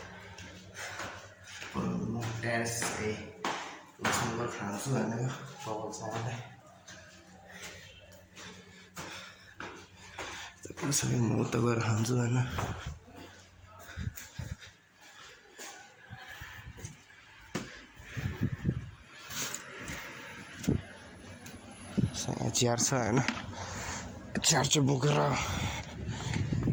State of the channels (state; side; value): identical; both; correlation 1.00